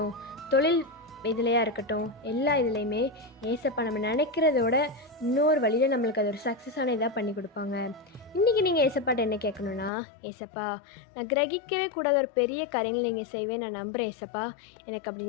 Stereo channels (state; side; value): drops out; right; at 9.9 s